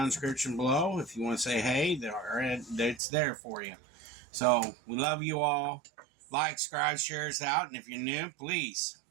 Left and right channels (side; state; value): left; drops out; at 3.0 s